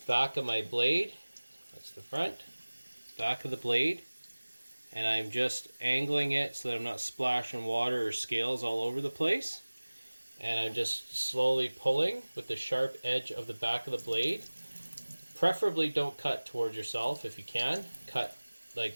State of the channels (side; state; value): both; inverted; correlation -1.00